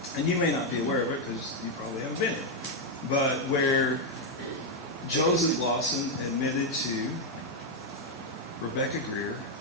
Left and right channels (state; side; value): normal; both; correlation 0.02